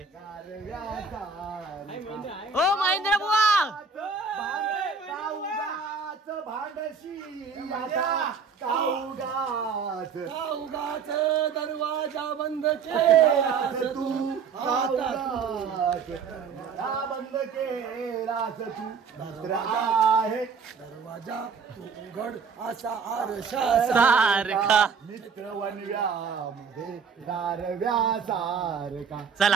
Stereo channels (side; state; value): left; quieter; 5.6 dB